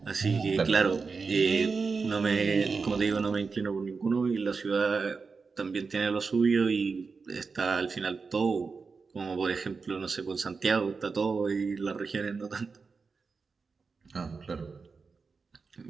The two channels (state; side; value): quieter; left; 4.7 dB